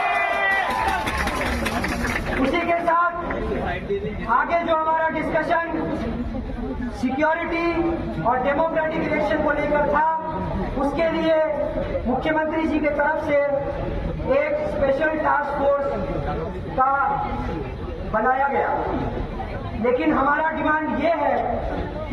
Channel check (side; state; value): both; identical; correlation 1.00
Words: उसी के साथ आगे जो हमारा डिस्कशन सिक्योरिटी और डेमोक्रेटिक इलेक्शन को लेकर था, उसके लिए मुख्यमंत्री जी की तरफ से एक स्पेशल टास्क फोर्स का बनाया गया। लेकिन हमारा डिमांड ये है